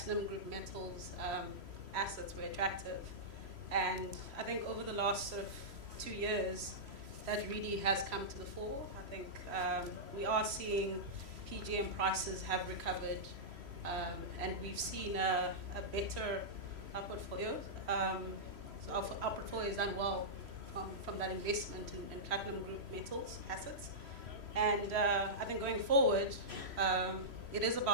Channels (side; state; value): left; late; 3.1 ms